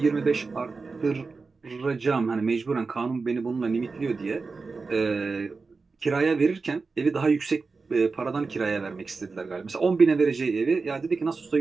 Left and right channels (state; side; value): quieter; left; 4.3 dB